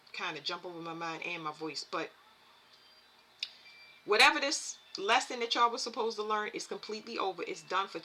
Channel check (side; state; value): both; identical; correlation 1.00